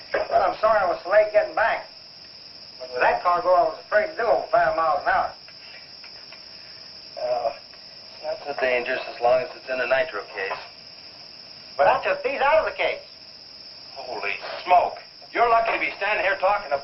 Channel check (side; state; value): both; identical; correlation 1.00